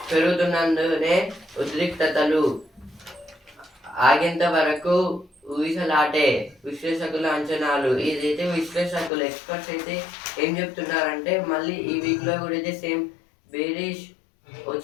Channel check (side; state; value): right; drops out; at 9.1 s